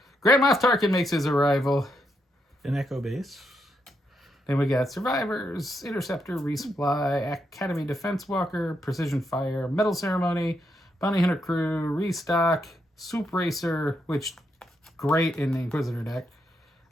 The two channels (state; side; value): normal; both; correlation 0.80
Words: Grand Moff Tarkin makes his arrival. An Echo Base. Then we got Survivors, Interceptor, Resupply, Academy Defense Walker, Precision Fire, Metal Ceremony, Bounty Hunter Crew, Restock, Soup Racer, which great in the Inquisitor deck.